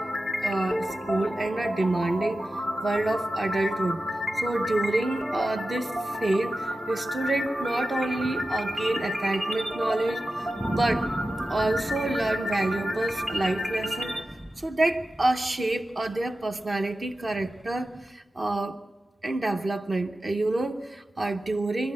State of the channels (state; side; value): normal; both; correlation 0.93